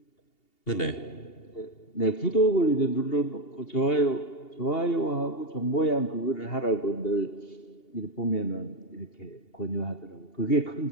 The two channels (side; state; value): right; late; 2.8 ms